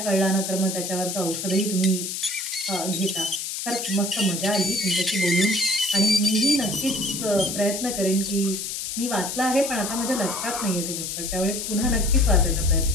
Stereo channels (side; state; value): left; noise; hiss, 4 dB below the sound